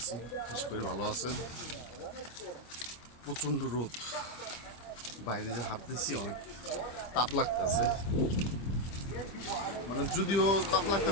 আশা করি ভালো আছেন। প্রচণ্ড রোদ, বাইরে যে হাঁটতেছি অনেক তাপ লাগতেছে। মানে যদিও তাপ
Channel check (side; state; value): right; late; 25 ms